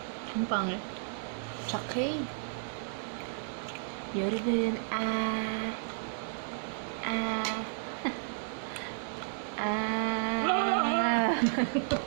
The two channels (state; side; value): silent; left; 56 dB below the other